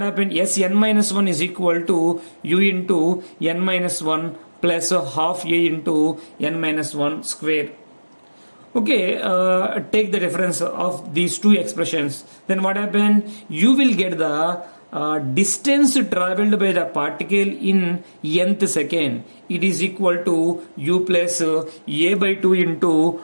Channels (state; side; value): inverted; both; correlation -1.00